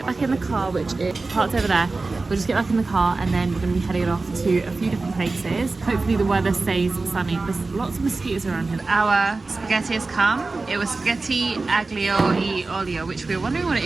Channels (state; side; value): quieter; left; 3.6 dB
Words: back in the car, which is parked over there. We'll just get back in the car and then we're gonna be heading off to a few different places. Hopefully the weather stays sunny. There's lots of mosquitoes around here. Our spaghetti has come. It was spaghetti aglio e olio, which we were wondering what it